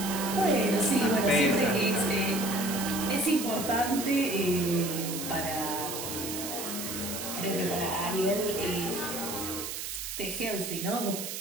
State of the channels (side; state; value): right; noise; hiss, 6 dB below the sound